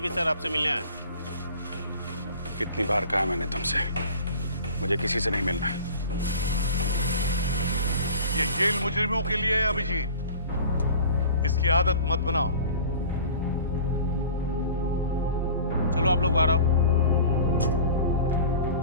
सर आपसे मिलने आए। कितनी बार कहा मैंने तुमसे, मुझे किसी से नहीं मिलना है। ये जेल मुजरिमों के लिए है अभिजीत, इसकी आदत मत बनाओ। चलो आप लोग बाहर आओ।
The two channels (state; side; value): inverted; both; correlation -0.42